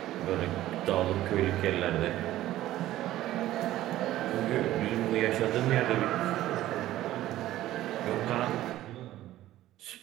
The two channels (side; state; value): left; quieter; 14.5 dB